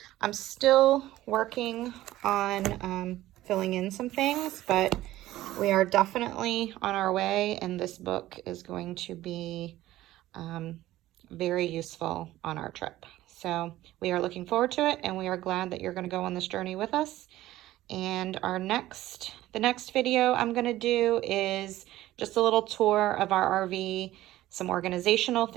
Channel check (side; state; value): left; quieter; 15.3 dB